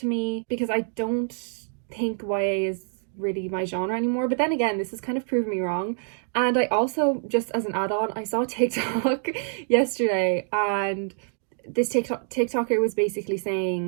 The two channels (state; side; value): silent; left; digital silence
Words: me because I don't think YA is really my genre anymore. But then again, this has kind of proved me wrong. And I also, just as an add-on, I saw TikTok yesterday, and this TikToker was basically